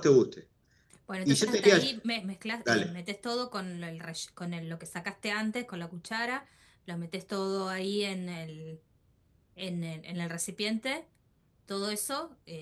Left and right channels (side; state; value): both; identical; correlation 1.00